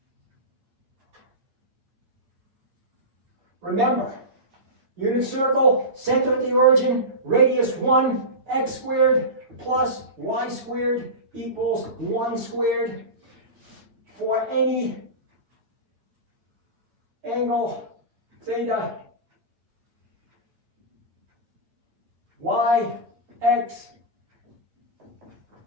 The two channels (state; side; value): late; left; 8.7 ms